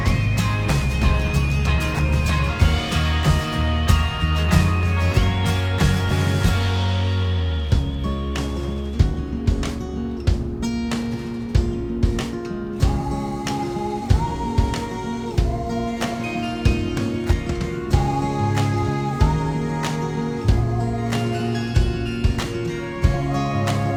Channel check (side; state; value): both; identical; correlation 1.00